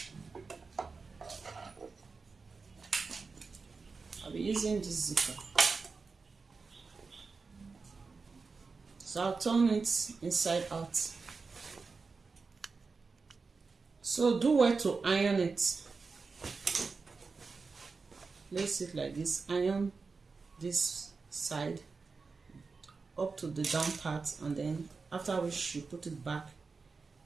I'll be using this zipper. So I'll turn it inside out. So do well to iron it. Place it like this, iron this side up to the down part, and then after which you put it back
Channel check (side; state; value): left; quieter; 4.5 dB